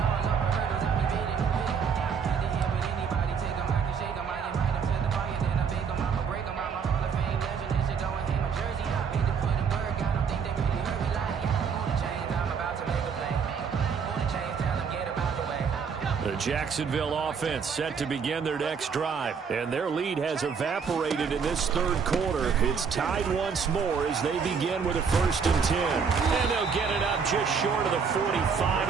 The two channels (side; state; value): left; quieter; 6.2 dB